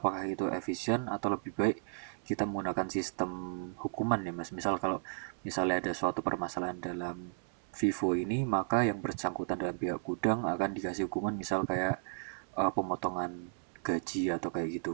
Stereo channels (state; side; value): silent; left; 55 dB below the other